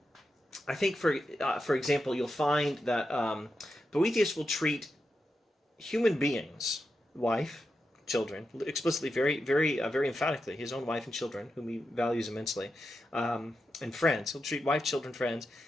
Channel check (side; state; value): both; normal; correlation 0.88